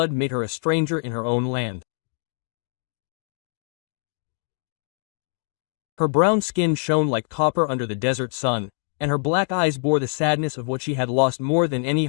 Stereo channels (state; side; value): silent; right; 57 dB below the other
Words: made her a stranger in her own land. Her brown skin shone like copper under the desert sun, and her black eyes bore the sadness of what she had lost more than any